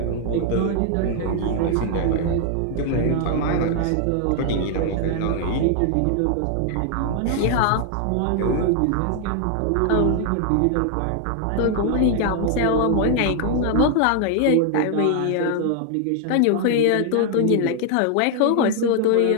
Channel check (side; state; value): both; different; correlation 0.00